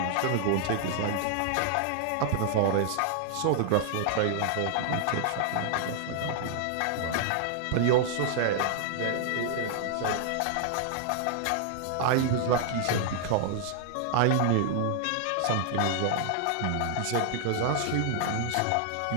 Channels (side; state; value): both; different; correlation 0.00